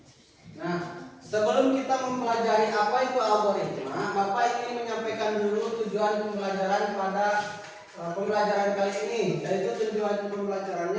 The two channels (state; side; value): identical; both; correlation 1.00